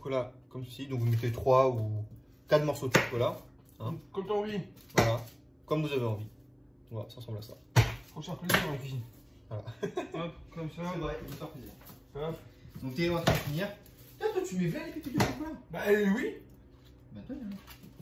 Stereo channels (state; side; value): identical; both; correlation 1.00